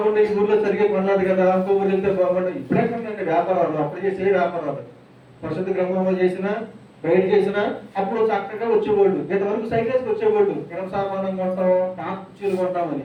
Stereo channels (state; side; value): identical; both; correlation 1.00